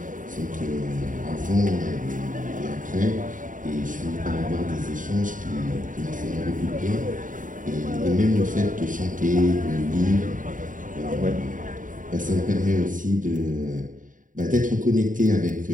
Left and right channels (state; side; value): late; left; 0.38 ms